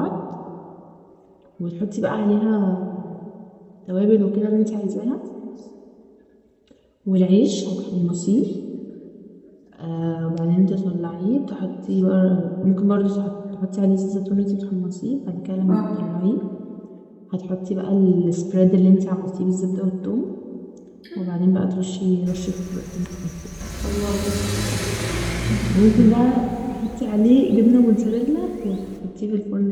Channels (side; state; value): both; identical; correlation 1.00